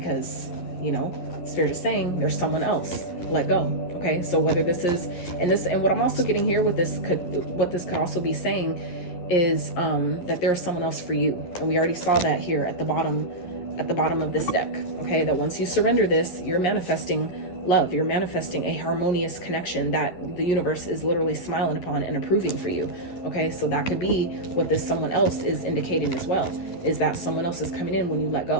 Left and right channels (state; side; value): late; right; 11 ms